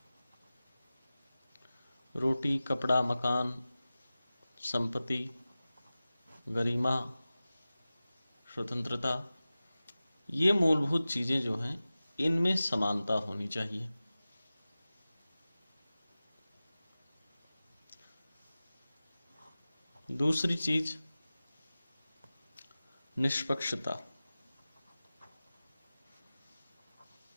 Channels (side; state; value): both; inverted; correlation -0.96